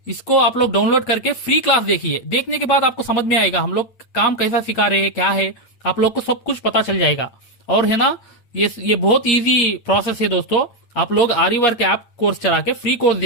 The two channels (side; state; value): right; late; 8.9 ms